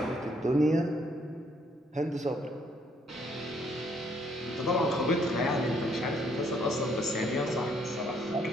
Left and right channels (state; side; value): normal; both; correlation 0.68